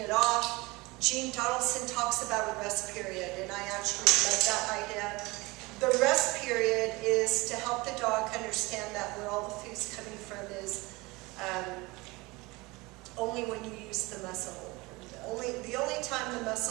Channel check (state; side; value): quieter; left; 23.4 dB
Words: it off. Gene Donaldson talks about a rest period, and I actually love that idea. The rest period is to help the dog understand that where all the food's coming from is only when you use the muzzle. The only time the